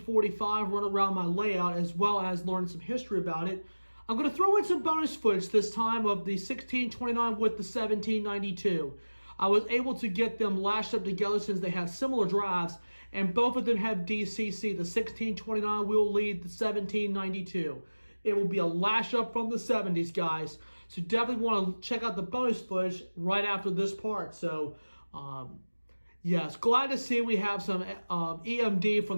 run around my layout, as well as learning some history about it. I'm going to throw in some bonus footage this time of the 1629 with the 1792. I was able to get them lashed up together since they have similar drives, and both of them have DCC. The 1629 will lead the 1792. It will be a lash up from the 70s, guys. So definitely want to check out the bonus footage right after this part. So, yes, glad to see we have some EMD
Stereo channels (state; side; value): inverted; both; correlation -1.00